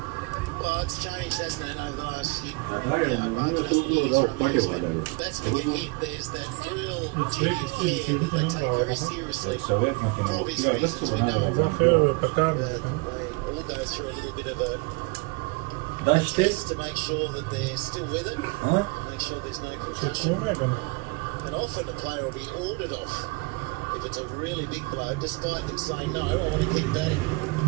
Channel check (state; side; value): quieter; left; 27.3 dB